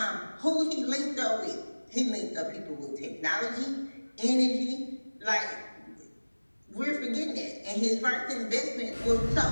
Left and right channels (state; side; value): inverted; both; correlation -1.00